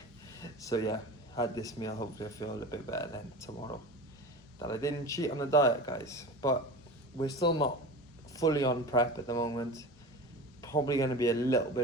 So yeah, had this meal. Hopefully I feel a little bit better then tomorrow that I didn't cheat on the diet, guys. But we're still not fully on prep at the moment. Probably going to be a little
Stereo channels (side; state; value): both; normal; correlation 0.32